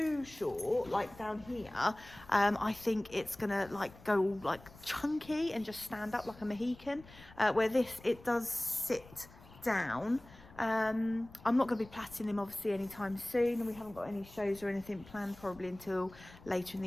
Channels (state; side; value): noise; left; rumble, 21 dB below the sound